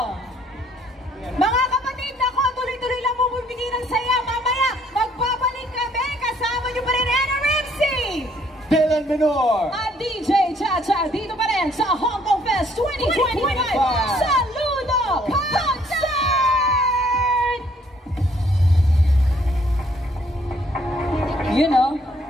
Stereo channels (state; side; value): normal; both; correlation 0.64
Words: Mga kapatid, nako, tuloy-tuloy lang bumibigay ng saya. Mamaya, magbabalik kami. Kasama nyo pa rin, Anna Ramsey! Dylan Menor! At DJ Chacha dito pa rin sa Hong Kong Fest 2025 Saludo Concert! You know,